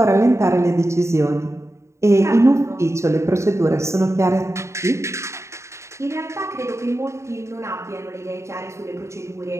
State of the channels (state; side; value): late; left; 0.14 ms